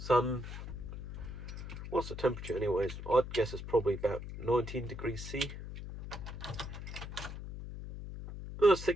What's the temperature anyways? I'd guess it's probably about 19 degrees C.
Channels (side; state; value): left; noise; hum, 8 dB below the sound